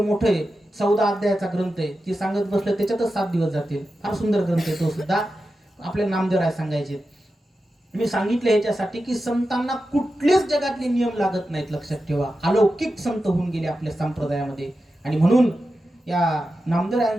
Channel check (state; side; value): normal; both; correlation 0.91